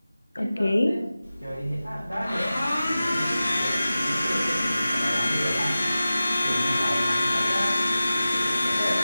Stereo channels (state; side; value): inverted; both; correlation -0.95